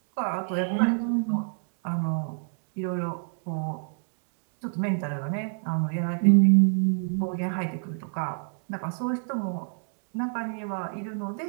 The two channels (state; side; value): silent; left; digital silence